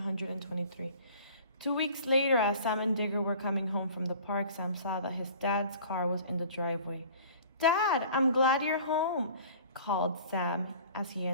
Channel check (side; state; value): both; inverted; correlation -0.46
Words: 2 weeks later, as Sam and Digger were coming home from the park, Sam saw that his dad's car was in the driveway. Dad, I'm glad you're home, called Sam as he